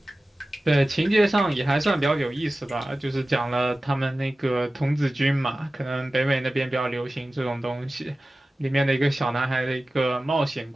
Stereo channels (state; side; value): normal; both; correlation 0.96